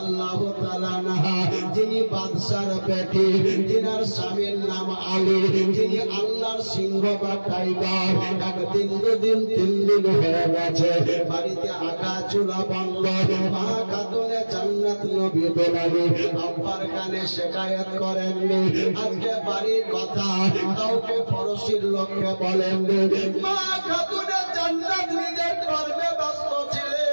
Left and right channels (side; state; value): both; inverted; correlation -1.00